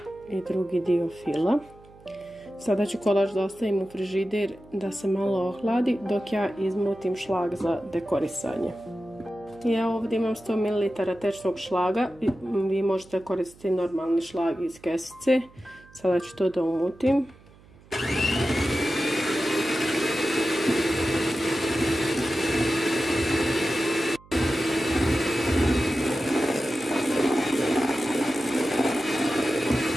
i drugi dio fila. Sada ću kolač da ostavim u frižider da se malo ohladi dok ja izmutim šlag za dekorisanje. Ja ovdje imam 100 ml tečnog šlaga, vi možete koristiti normalni šlag iz kesice. Sada ću to da umutim.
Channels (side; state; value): right; noise; hum, 25 dB below the sound